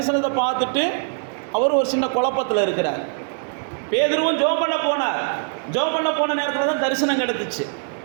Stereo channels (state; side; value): silent; left; 64 dB below the other